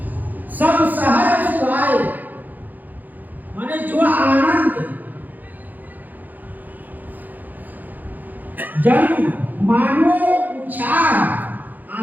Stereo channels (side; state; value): left; late; 0.084 ms